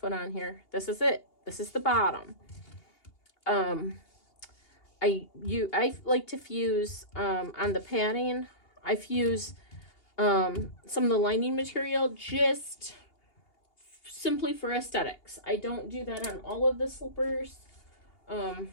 on here, this is it. This is the bottom. I like to fuse on the padding. I fuse some of the lining material just simply for aesthetics. I don't do that on all of the slippers. Let's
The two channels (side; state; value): right; late; 2.8 ms